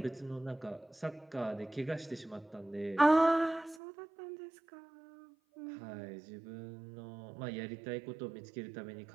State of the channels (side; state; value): left; drops out; at 3.8 s